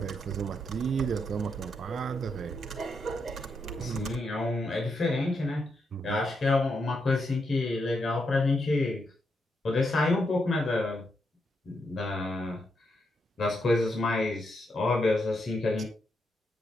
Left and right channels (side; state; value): both; normal; correlation 0.81